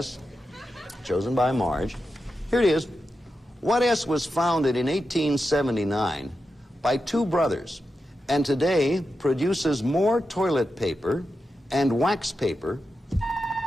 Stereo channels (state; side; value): normal; both; correlation 0.89